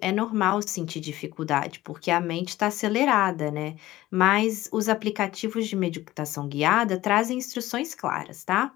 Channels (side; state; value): right; quieter; 16.3 dB